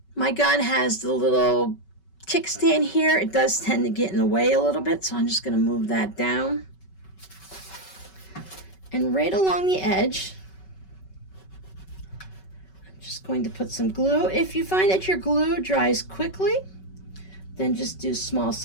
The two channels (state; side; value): late; right; 5.3 ms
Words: My gun has the little kickstand here. It does tend to get in the way a little bit, so I'm just going to move that down. And right along the edge, I'm just going to put some glue. If you find that your glue dries quickly, then just do small